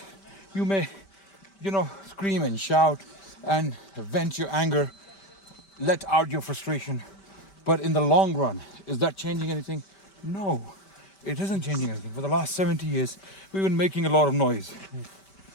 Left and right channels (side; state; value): right; late; 5.2 ms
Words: You may, scream and shout and vent your anger, let out your frustration. But in the long run, is that changing anything? No, it isn't changing anything. For the last 70 years, we've been making a lot of noise.